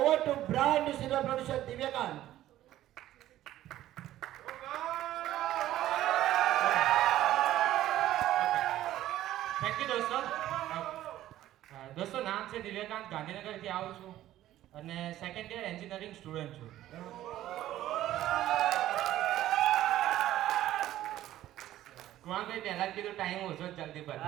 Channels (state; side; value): quieter; left; 13.7 dB